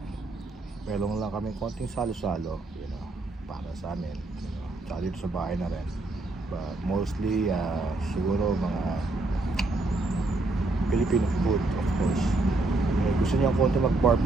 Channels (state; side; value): quieter; left; 3.0 dB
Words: melong lang kami konting salo-salo, para sa amin, tsaka dito sa bahay na rin. But mostly siguro mga Filipino food, of course. Gusto niya konti